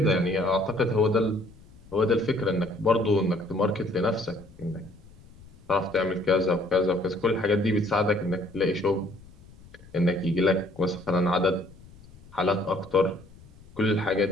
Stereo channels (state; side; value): noise; left; rumble, 22 dB below the sound